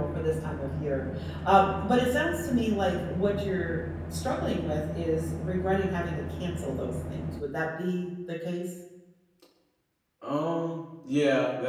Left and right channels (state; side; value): identical; both; correlation 1.00